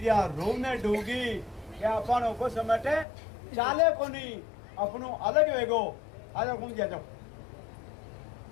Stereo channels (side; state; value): right; drops out; at 3.1 s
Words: रोने डूगी क्या अपन को समेटे चाले को नहीं अपनो अलग वेगो। आ जाओ घूम जाओ।